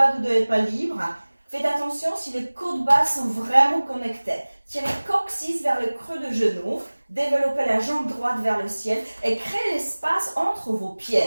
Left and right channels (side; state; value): both; inverted; correlation -1.00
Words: du dos n'est pas libre, faites attention si les côtes basses sont vraiment connectées. Tirez coccyx vers le creux de genou. Développez la jambe droite vers le ciel et créez l'espace entre vos